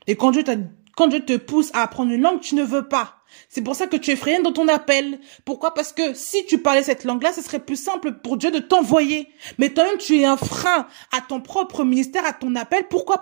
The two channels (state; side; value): silent; left; digital silence